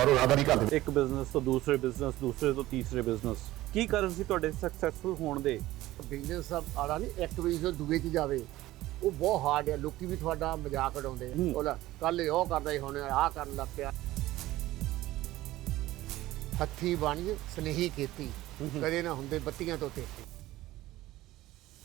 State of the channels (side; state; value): left; quieter; 16.4 dB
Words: ਰਾਦਾ ਨਹੀਂ ਕਰਦੇ। ਇੱਕ ਬਿਜ਼ਨਸ ਤੋਂ ਦੂਸਰੇ ਬਿਜ਼ਨਸ, ਦੂਸਰੇ ਤੋਂ ਤੀਸਰੇ ਬਿਜ਼ਨਸ। ਕੀ ਕਾਰਨ ਸੀ ਤੁਹਾਡੇ ਸਕਸੈਸਫੁਲ ਹੋਣ ਦੇ? ਬਿਜ਼ਨਸ ਆਲਾ ਨਹੀਂ, ਇੱਕ ਵੀ ਜੋ ਦੂਏ 'ਚ ਜਾਵੇ ਉਹ ਬਹੁਤ ਹਾਰਡ ਹੈ। ਲੋਕੀ ਵੀ ਤੁਹਾਡਾ ਮਜ਼ਾਕ ਉਡਾਉਂਦੇ ਆ। ਉਹਦਾ ਕੱਲ ਉਹ ਕਰਦਾ ਹੀ ਹੁਣ ਆਹ ਕਰਨ ਲੱਗ ਪਿਆ। ਹੱਥੀ ਬਾਣੀ ਸਨੇਹੀ ਖੇਤੀ ਕਦੇ ਨਾ ਹੁੰਦੇ ਬੱਤੀਆਂ ਤੋਂ ਤੇਤੀ।